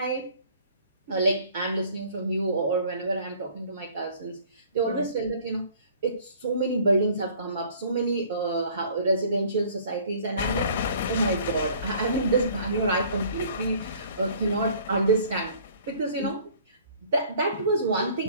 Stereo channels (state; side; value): inverted; both; correlation -0.53